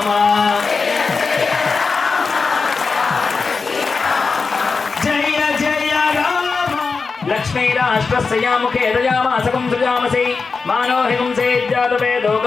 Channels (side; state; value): right; quieter; 4.6 dB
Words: జయ జయ రామ లక్ష్మీరాష్ట్రస్యాముఖే దయామాసకం సృజామసి మానో హింసే జాతవేదో